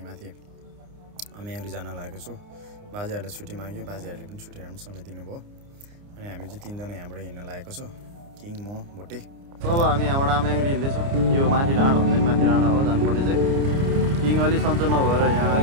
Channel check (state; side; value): late; left; 29 ms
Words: माथि अम्याङ्ग्री जान लागेको छु। बाजेहरूले छुट्टी माग्यो, बाजेहरूले पनि छुट्टी राम्रोसँगले दिनुभयो। अनि हामी चाहिँ तीनजना यहाँबाट हिँड्न लागेको छु, किङ, म, भोटे। अब हामी यहाँबाट अम्याङ्ग्री हिँड्दैछौँ। यो माथि डाँडा हुँदैन, माथि डाँडा हो जानुपर्ने चाहिँ। किङ अलि सन्चो नभएर यहाँ